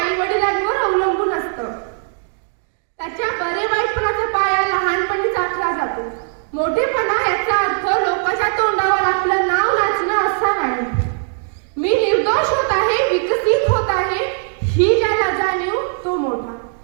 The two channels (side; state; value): left; silent; 67 dB below the other